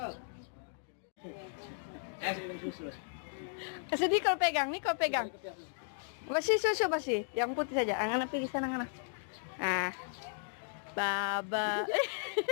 Kasih Nicole pegang, Nicole pegang. Masih susu masih, yang putih saja. Anak pergi sana, anak. Ah, Baba.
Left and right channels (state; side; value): silent; right; digital silence